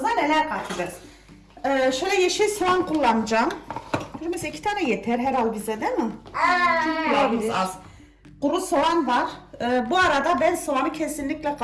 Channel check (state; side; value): identical; both; correlation 1.00